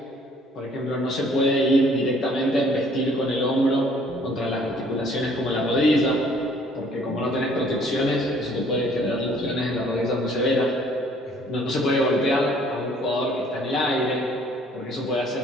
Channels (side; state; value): both; normal; correlation 0.59